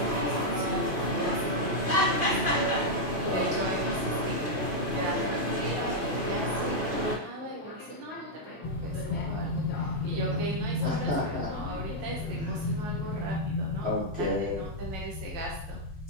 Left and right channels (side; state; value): left; late; 2.5 ms